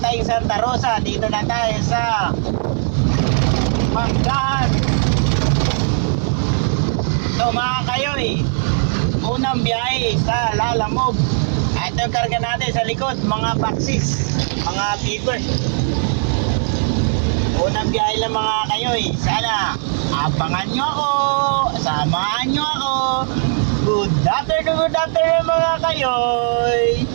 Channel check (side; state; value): left; silent; 67 dB below the other